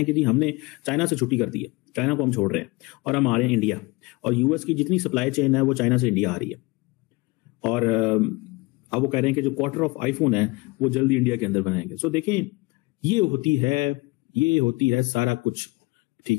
कि जी हमने चाइना से छुट्टी कर दी है, चाइना को हम छोड़ रहे हैं और हम आ रहे हैं इंडिया, और यूएस की जितनी सप्लाई चेन है वो चाइना से इंडिया आ रही है। और अब वो कह रहे हैं कि जो क्वार्टर ऑफ आईफोन है वो जल्दी इंडिया के अंदर बनाएंगे। सो देखें, ये होती है सारा कुछ,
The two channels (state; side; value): quieter; right; 24.5 dB